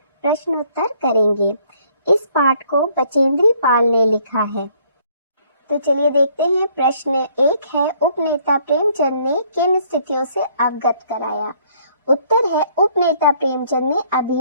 प्रश्नोत्तर करेंगे। इस पाठ को बचेंद्री पाल ने लिखा है। तो चलिए देखते हैं। प्रश्न 1 है, उपनेता प्रेमचंद ने किन स्थितियों से अवगत कराया? उत्तर है, उपनेता प्रेमचंद ने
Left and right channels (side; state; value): both; inverted; correlation -0.63